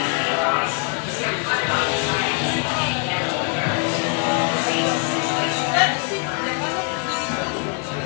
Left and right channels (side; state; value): right; quieter; 37.6 dB